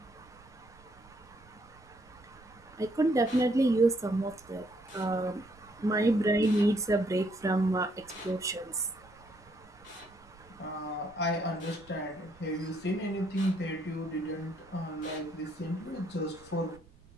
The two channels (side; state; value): right; noise; rumble, 25 dB below the sound